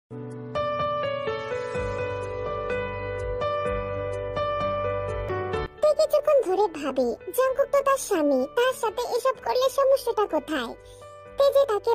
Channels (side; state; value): both; identical; correlation 1.00